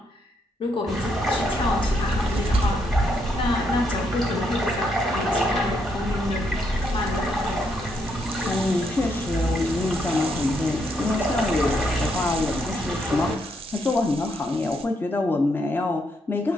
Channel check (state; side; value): normal; both; correlation 0.76